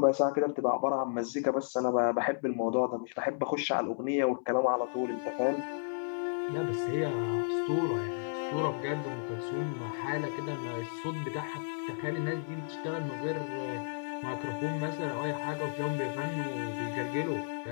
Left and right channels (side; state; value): right; silent; 56 dB below the other